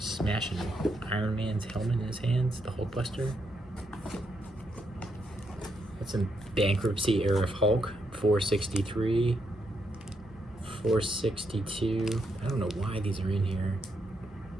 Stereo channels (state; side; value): normal; both; correlation 0.79